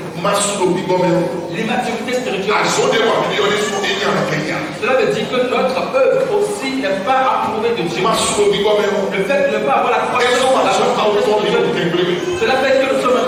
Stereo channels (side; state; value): both; identical; correlation 1.00